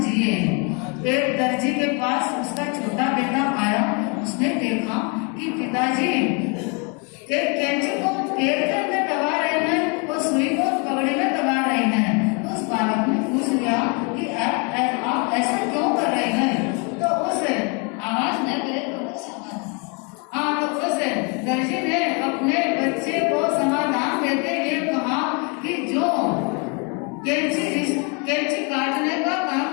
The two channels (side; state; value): right; quieter; 33.9 dB